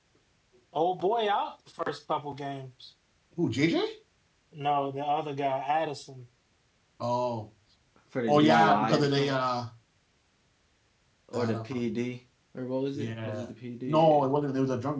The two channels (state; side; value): identical; both; correlation 1.00